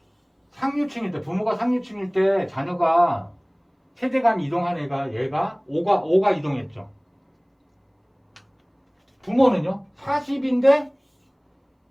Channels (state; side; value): identical; both; correlation 1.00